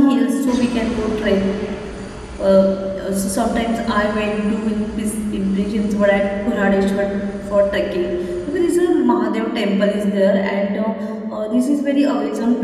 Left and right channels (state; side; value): identical; both; correlation 1.00